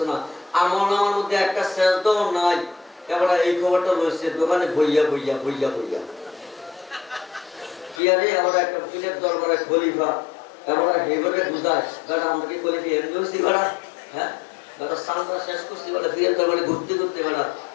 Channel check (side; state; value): right; drops out; at 8.0 s